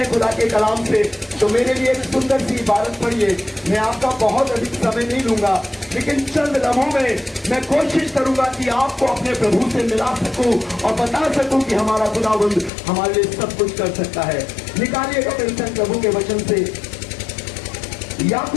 खुदा के कलाम से, तो मेरे लिए एक सुंदर सी इबारत पढ़िए। मैं आपका बहुत अधिक समय नहीं लूंगा, लेकिन चंद लम्हों में मैं कोशिश करूंगा कि आपको अपने प्रभु से मिला सकूं और बता सकूं कि हमारा खुदावंद हमारे लिए सब कुछ कर सकता है। निकालिएगा मेरे संग प्रभु के वचन से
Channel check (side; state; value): right; drops out; at 12.7 s